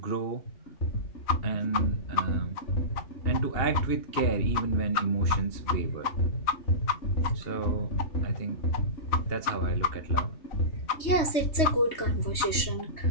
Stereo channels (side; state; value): right; late; 3.2 ms